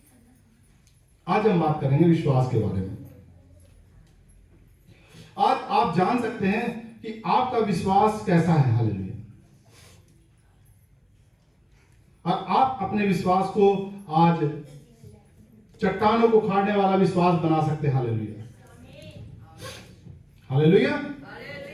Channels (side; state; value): both; identical; correlation 1.00